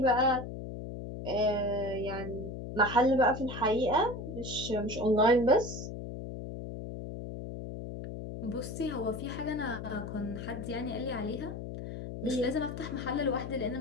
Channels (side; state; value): left; noise; hum, 8 dB below the sound